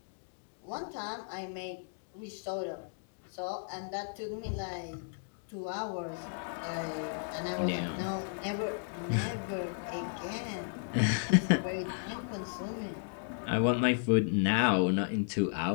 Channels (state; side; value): silent; right; digital silence